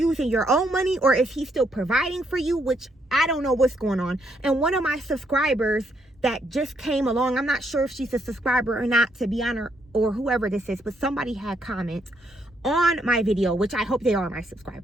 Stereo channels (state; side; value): normal; both; correlation 0.74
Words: your own money, or is he still providing for you? Which I don't know what's going on. And one of my subscribers that just came along, I'm not sure if she's a subscriber or not, to be honest, or whoever this is, but somebody had comments on my video, which I hope they are my